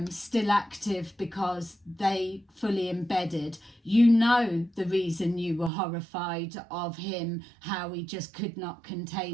still active because they fully embedded. You know the reason you were horrified of him, how he just could not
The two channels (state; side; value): drops out; left; at 5.7 s